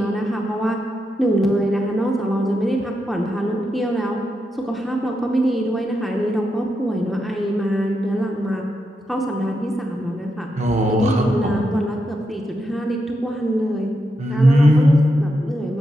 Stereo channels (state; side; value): normal; both; correlation 0.85